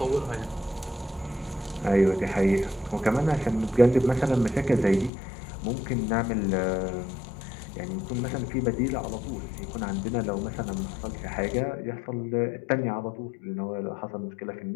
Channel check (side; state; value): right; drops out; at 5.1 s